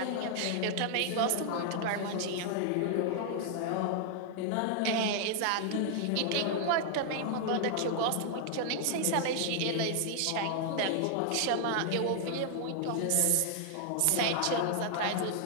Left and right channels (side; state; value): both; different; correlation 0.00